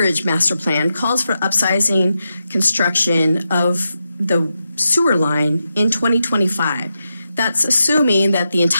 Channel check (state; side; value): inverted; both; correlation -0.87